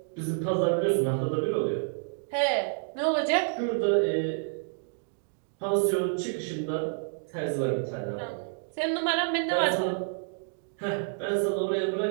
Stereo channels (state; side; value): silent; left; digital silence